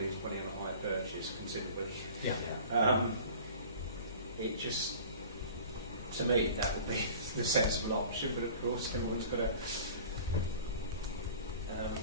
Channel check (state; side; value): inverted; both; correlation -0.42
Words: lose money on a hire purchase considerably. Yeah. It just, to me, that would be the sensible option, but of course everyone's got to